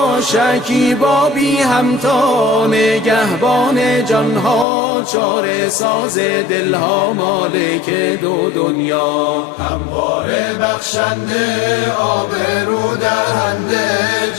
شکیبا بی همتا، نگهبان جانها چاره ساز دلها، مالک دو دنیا، همواره بخشنده آبرو دهنده،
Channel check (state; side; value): drops out; right; at 4.7 s